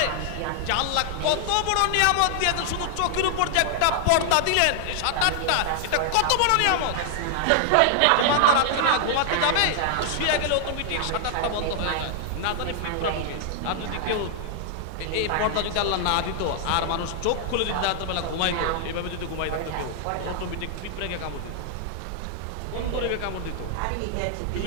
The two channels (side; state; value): both; different; correlation 0.00